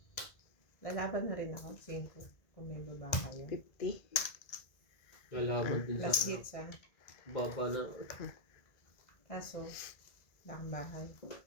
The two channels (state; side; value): late; right; 2.0 ms